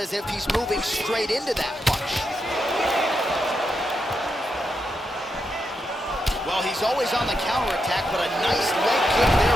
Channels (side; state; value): both; normal; correlation 0.84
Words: if he's moving straight into that punch. Well, he's always on the counterattack, but a nice leg kick